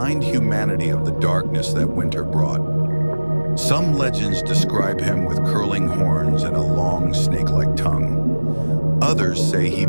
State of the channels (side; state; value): both; inverted; correlation -1.00